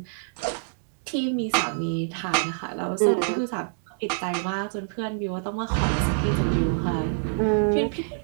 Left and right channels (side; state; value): left; silent; 61 dB below the other